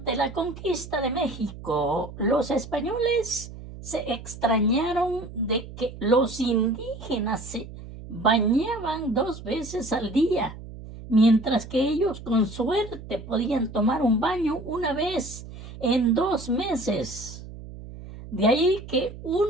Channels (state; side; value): noise; right; hum, 14 dB below the sound